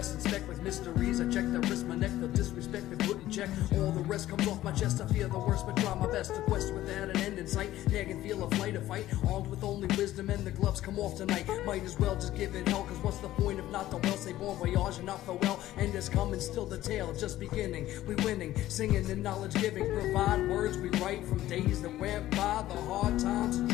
inspect like mysteries. I check the wrist, my neck, the disrespect, the put in check. All the rest comes off my chest, I fear the worst, but try my best. A quest without an end in sight, I can feel a flight, a fight. Armed with only wisdom and the gloves come off tonight. Might as well just give it hell, cause what's the point if not the well? Say bon voyage and not farewell, and is coming, still the tale, just beginning. We winning, singing and knowledge giving. Provide words we write from days that went by. The hard times and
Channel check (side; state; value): right; quieter; 14.5 dB